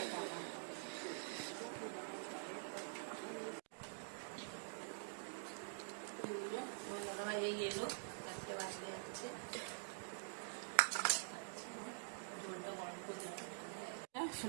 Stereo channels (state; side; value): silent; left; digital silence